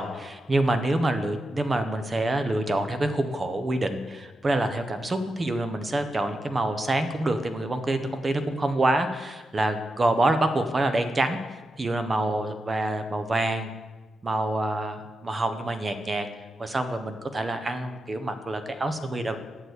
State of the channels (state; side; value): normal; both; correlation 0.88